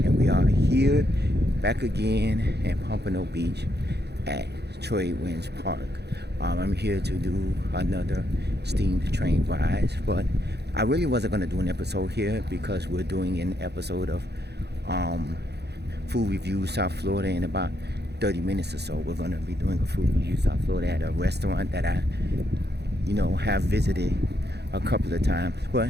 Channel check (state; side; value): late; left; 0.48 ms